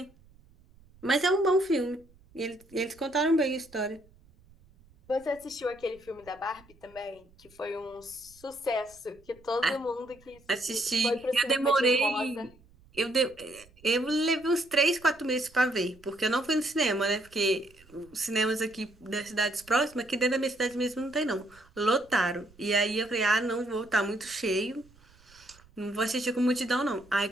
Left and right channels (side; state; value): right; noise; rumble, 27 dB below the sound